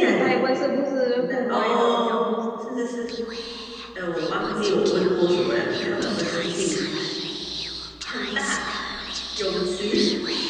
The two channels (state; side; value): identical; both; correlation 1.00